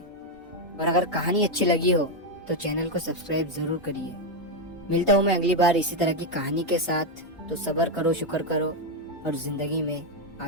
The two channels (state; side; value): normal; both; correlation 0.04